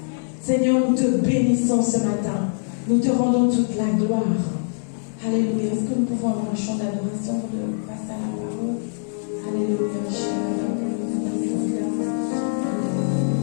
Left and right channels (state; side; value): silent; right; 63 dB below the other